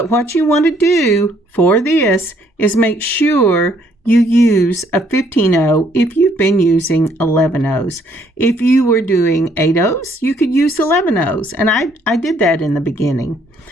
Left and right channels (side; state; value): both; normal; correlation 0.66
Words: what you want to do for this is make sure you use a 15-0 if you've been using 11-0s. If you were doing 8-0s, you could use 11-0s, and I did that in the beginning.